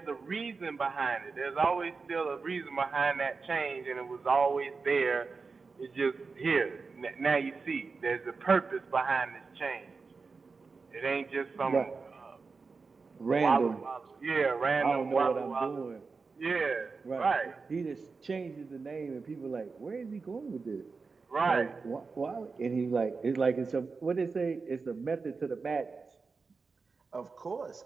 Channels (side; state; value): left; quieter; 4.5 dB